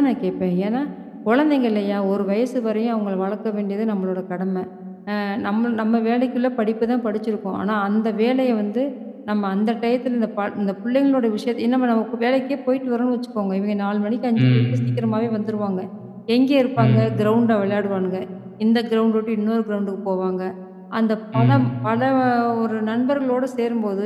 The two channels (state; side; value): identical; both; correlation 1.00